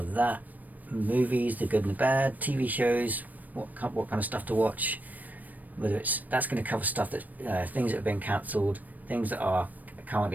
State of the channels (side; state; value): left; late; 0.081 ms